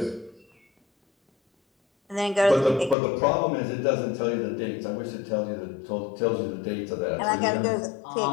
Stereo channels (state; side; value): drops out; right; at 3.0 s